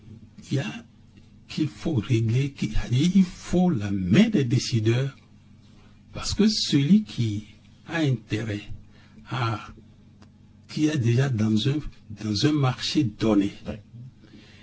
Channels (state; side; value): identical; both; correlation 1.00